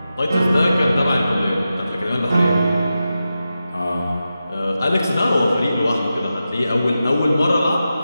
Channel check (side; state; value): both; inverted; correlation -0.91